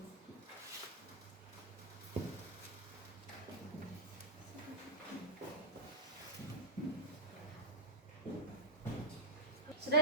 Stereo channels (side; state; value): both; normal; correlation -0.06